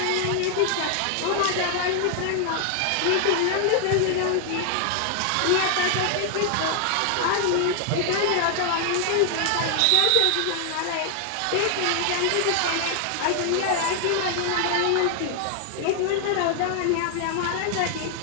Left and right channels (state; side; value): different; both; correlation 0.00